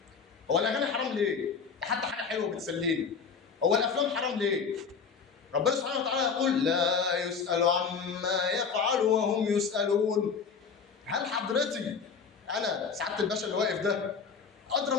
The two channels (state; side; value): quieter; right; 5.8 dB